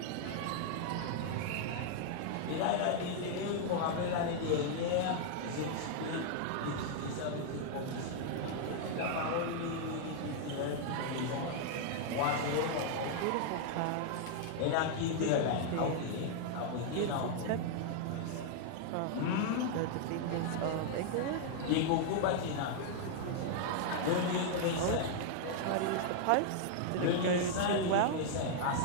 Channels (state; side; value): different; both; correlation 0.00